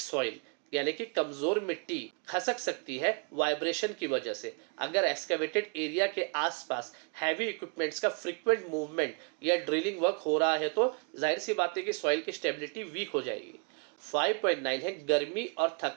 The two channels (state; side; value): quieter; left; 39.0 dB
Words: यानी कि कमजोर मिट्टी खसक सकती है वाइब्रेशन की वजह से। अगर एक्सकेवेटेड एरिया के आसपास हैवी इक्विपमेंट्स का फ्रीक्वेंट मूवमेंट या ड्रिलिंग वर्क हो रहा है तो जाहिर सी बात है कि सॉइल की स्टेबिलिटी वीक हो जाएगी। 5.9 है गर्मी और